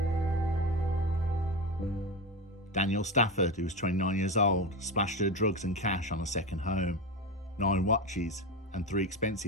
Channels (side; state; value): both; normal; correlation 0.20